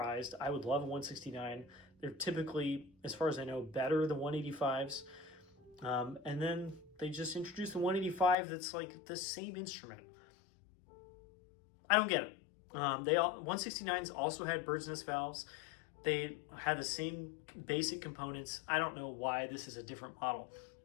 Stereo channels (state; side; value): drops out; right; at 8.3 s